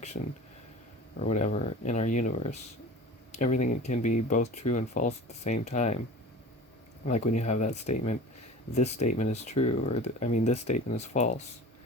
or whatever in our universe. Everything can be both true and false at the same time. Like when you have that statement, this statement is true, or this statement is false.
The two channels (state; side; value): normal; both; correlation 0.38